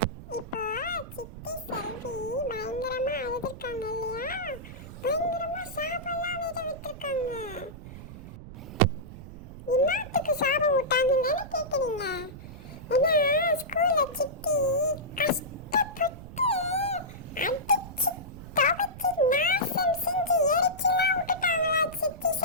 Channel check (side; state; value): right; noise; rumble, 14 dB below the sound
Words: இப்போ சித்தி செல்வி பயங்கரமா அழுதுருக்காங்க இல்லையா? பயங்கரமா சாபம்லாம் வேற விட்டுருக்காங்க. இன்னத்துக்கு சாபம் விட்டாங்கன்னு கேக்குறீங்க? ஏன்னா ஸ்கூல்ல சித்தி கஷ்டப்பட்டு அடிச்சு துவைச்சு நாசம் செஞ்சு எரிச்சுலாம் விட்டுட்டாங்களா சித்தி